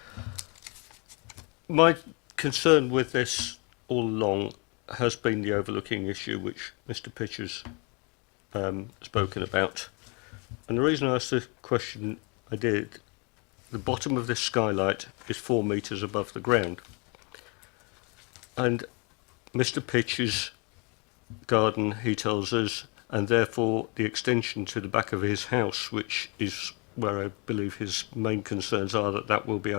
My concern with this all along has been the overlooking issue which Mr. Pitcher's spoken about. And the reason I asked the question I did, the bottom of this skylight is 4 metres above the ground. And Mr. Pitcher's garden, he tells us, and therefore the extension to the back of his house, which is where I believe his main concerns are, that will be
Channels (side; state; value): right; quieter; 32.3 dB